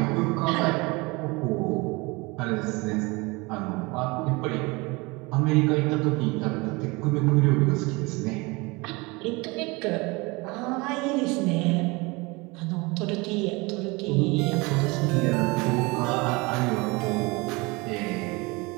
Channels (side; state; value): left; quieter; 25.3 dB